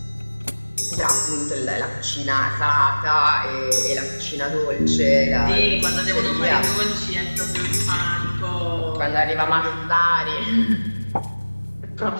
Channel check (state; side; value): inverted; both; correlation -1.00